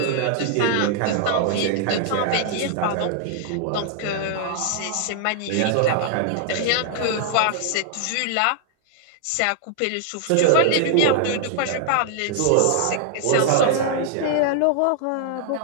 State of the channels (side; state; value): both; different; correlation -0.01